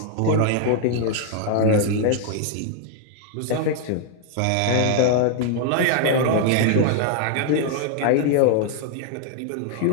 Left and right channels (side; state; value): both; different; correlation 0.00